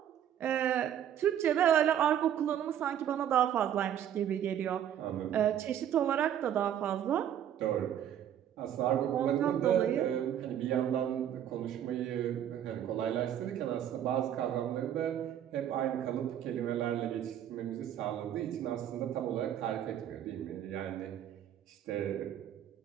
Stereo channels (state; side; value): quieter; left; 10.2 dB